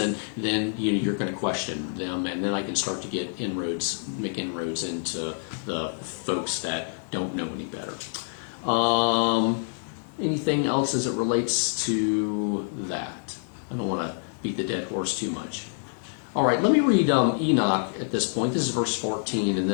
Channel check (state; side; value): silent; right; digital silence